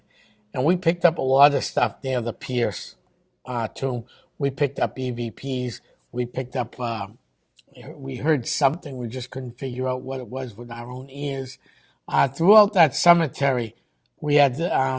And we picked up a lot of stuff near the Pierce tomb. We picked up EVPs. We picked up, we heard something. We just couldn't figure out what it was with our own ears. Throughout that cemetery, we had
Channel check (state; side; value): identical; both; correlation 1.00